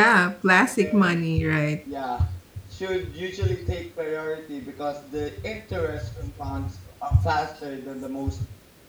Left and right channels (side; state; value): both; identical; correlation 1.00